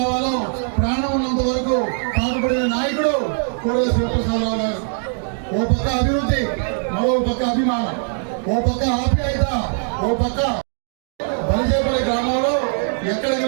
ప్రాణం ఉన్నంత వరకు పాటుపడిన నాయకుడు కోడెల శివప్రసాదరావు గారు. ఓ పక్క అభివృద్ధి, మరో పక్క అభిమానం, ఓ పక్క ఆప్యాయత, ఓ పక్క బలిజేపల్లి గ్రామంలో ఎక్కడికి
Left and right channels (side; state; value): left; silent; 65 dB below the other